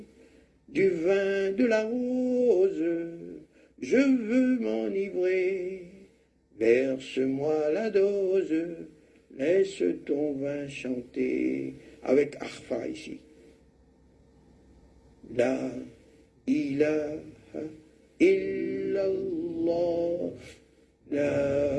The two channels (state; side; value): identical; both; correlation 1.00